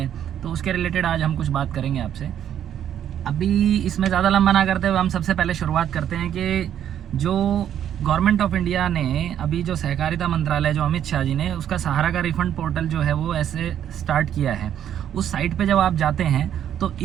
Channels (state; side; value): quieter; left; 10.0 dB